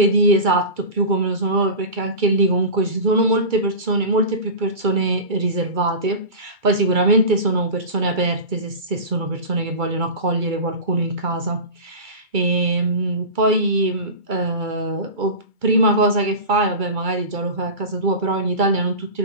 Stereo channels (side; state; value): left; late; 2.3 ms